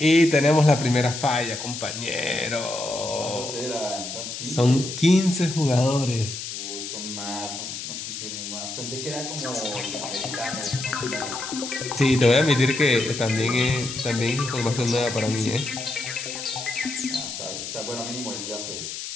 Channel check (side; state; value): left; noise; hiss, 7 dB below the sound